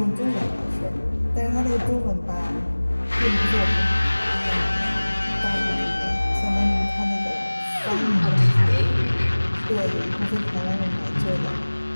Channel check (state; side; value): inverted; both; correlation -1.00